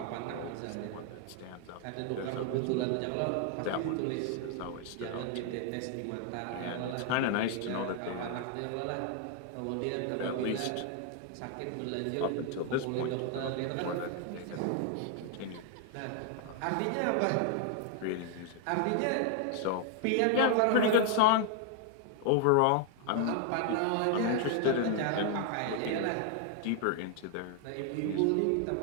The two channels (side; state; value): both; different; correlation 0.00